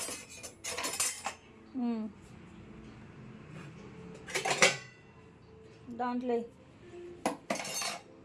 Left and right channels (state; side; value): identical; both; correlation 1.00